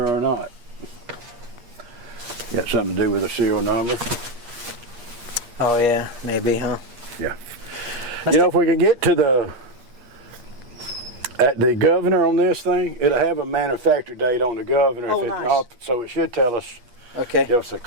or not. Got something to do with a serial number. Oh yeah, maybe, huh? Yeah. You know, if we can get to the governor on this thing, it'll have a manufacture date on the governor. Oh, nice. So it should tell us. Okay. Give us a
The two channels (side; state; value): left; late; 8.4 ms